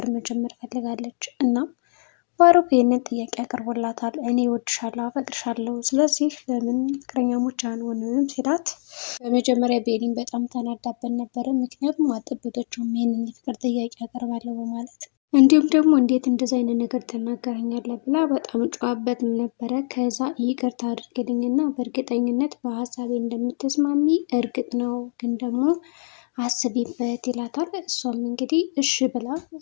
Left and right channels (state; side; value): silent; right; 63 dB below the other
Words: መጀመር ፈልጋለች። እና ባሮክ ይህንን ጥያቄ አቅርቦላታል። እኔ እወድሻለሁ፣ አፈቅርሻለሁ፣ ስለዚህ ለምን ፍቅረኛሞች አንሆንም ሲላት በመጀመሪያ ቤሊን በጣም ተናዳበት ነበረ። ምክንያቱም አልጠበቀችውም ይህንን የፍቅር ጥያቄ አቀርባለሁ በማለት እንዲሁም ደግሞ እንዴት እንደዚህ አይነት ነገር ትናገረኛለህ ብላ በጣም ጨዋበትም ነበረ። ከዛ ይቅርታ አድርግልኝና በእርግጠኝነት በሀሳቤ እንደምትስማሚ እርግጥ ነው፣ ግን ደግሞ አስቢበት ይላታል። እሷም እንግዲህ እሺ ብላ